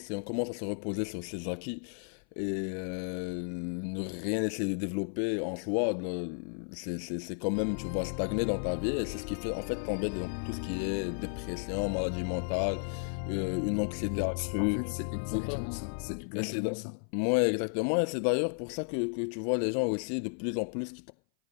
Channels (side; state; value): right; silent; 56 dB below the other